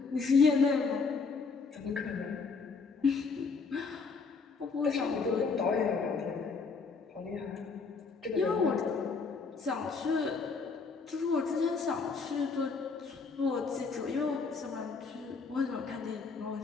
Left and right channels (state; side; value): quieter; right; 4.7 dB